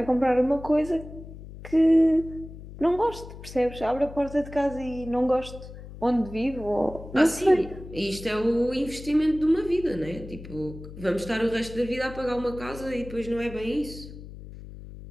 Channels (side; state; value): left; noise; hum, 14 dB below the sound